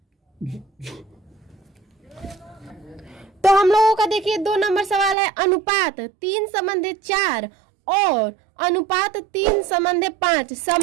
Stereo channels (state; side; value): drops out; left; at 5.2 s